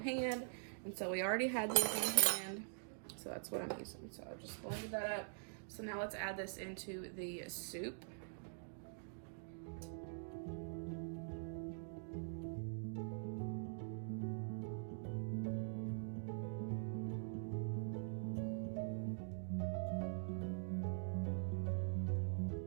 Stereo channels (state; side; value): silent; left; digital silence